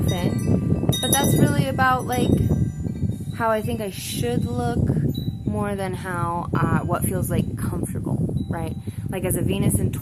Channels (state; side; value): identical; both; correlation 1.00